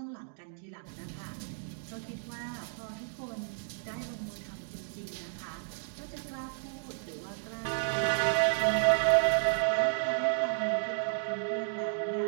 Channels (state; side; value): silent; left; digital silence